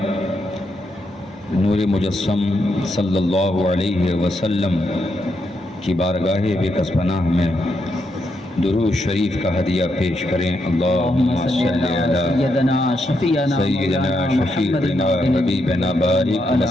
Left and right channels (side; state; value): both; normal; correlation 0.80